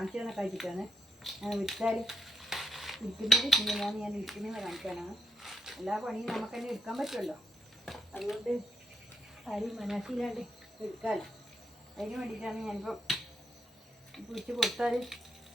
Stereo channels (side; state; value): both; normal; correlation 0.77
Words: തന്നെ കഴിച്ചിട്ടാണ് ഞാൻ വിൽച്ചാൽ ഇരിക്കുന്നത്. ഇങ്ങനെയാണ് ഞാൻ ഇരിക്കുന്നത് കാണിക്കാനാണ്. എല്ലാ പണിയും നമുക്ക് തന്നെ എടുക്കാൻ പറ്റുമല്ലോ, അതുകൊണ്ട് ആരും മനസ്സിലാണ്ട് എടുക്കാമല്ലോ. അതിന് വേണ്ടിയിട്ടാണ് ഞാനിപ്പോൾ പിടിച്ച് കൊടുത്താൽ